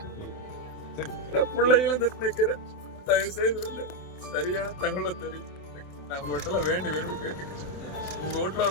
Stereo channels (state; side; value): late; right; 27 ms